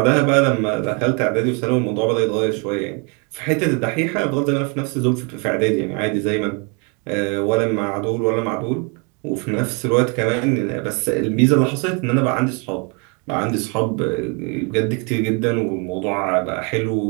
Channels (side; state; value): left; quieter; 33.8 dB